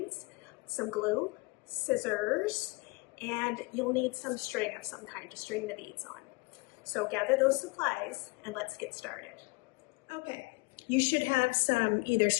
some glue, scissors, and you'll need some string of some kind to string the beads on. So gather those supplies and let's get started. Okay, you should have some either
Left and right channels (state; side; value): quieter; right; 27.1 dB